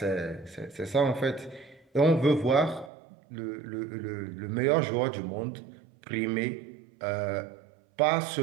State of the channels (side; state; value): left; drops out; at 2.9 s